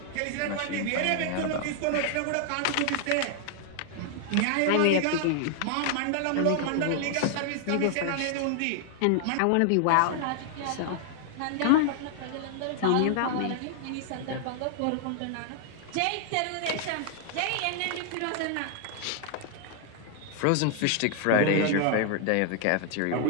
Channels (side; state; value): both; different; correlation 0.00